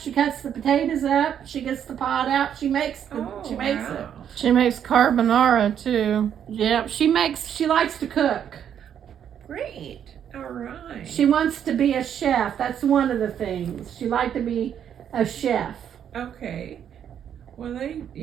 cuts the potatoes up. She gets the pot out. She makes it. Wow. She makes carbonara too. Yeah, she likes to cook. Great. All right. She wants to be a chef. That's one of the things. She liked to be a chef. Okay. Well, they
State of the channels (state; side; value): quieter; left; 9.0 dB